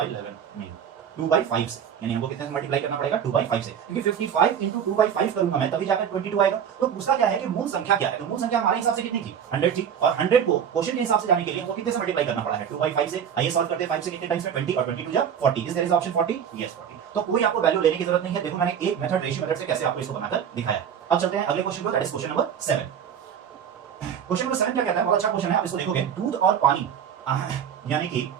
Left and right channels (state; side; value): quieter; left; 8.4 dB